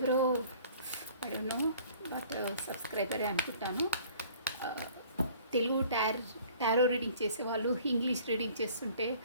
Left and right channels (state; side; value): inverted; both; correlation -0.51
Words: ఐ డోంట్ నో బట్ సబ్స్క్రైబరే అనుకుంటాను, తెలుగు టారో రీడింగ్ చేసేవాళ్ళు ఇంగ్లీష్ రీడింగ్ చేస్తుంటే